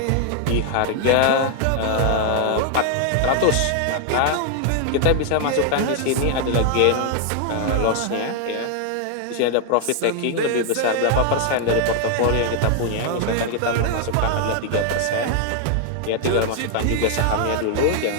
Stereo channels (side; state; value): both; different; correlation 0.00